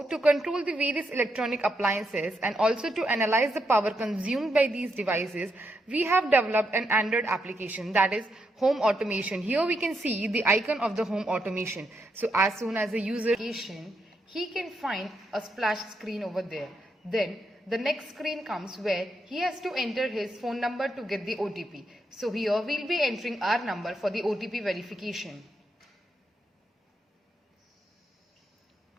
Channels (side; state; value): both; normal; correlation 0.81